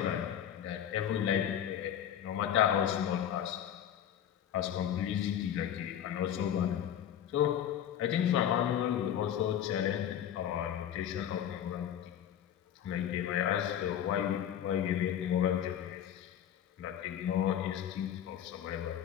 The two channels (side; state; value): right; quieter; 10.0 dB